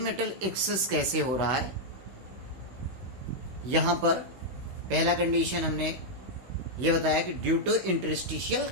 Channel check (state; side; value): late; left; 16 ms